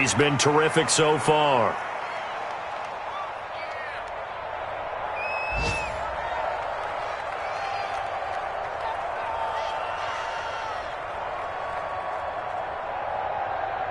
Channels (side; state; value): both; identical; correlation 1.00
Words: been terrific so far.